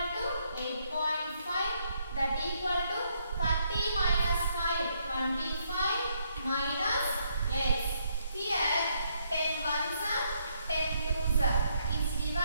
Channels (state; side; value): inverted; both; correlation -0.74